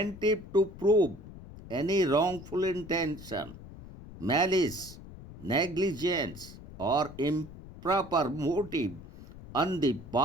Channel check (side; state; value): left; noise; rumble, 16 dB below the sound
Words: to prove any wrongful intention, malice, negligence, or improper motive on the